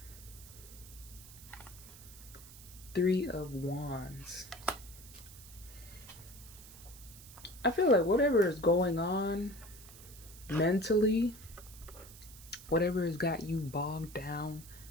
Three of Wands. I feel like whatever is going on mentally, whatever has got you bogged down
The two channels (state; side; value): noise; right; hiss, 18 dB below the sound